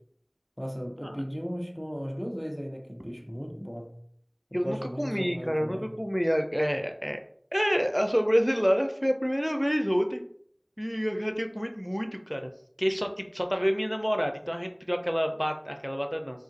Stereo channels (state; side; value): identical; both; correlation 1.00